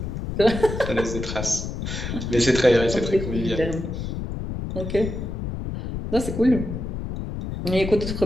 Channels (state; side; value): noise; left; rumble, 5 dB below the sound